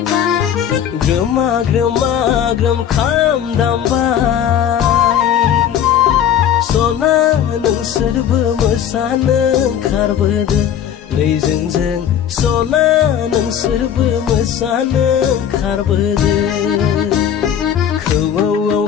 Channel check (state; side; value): quieter; right; 9.4 dB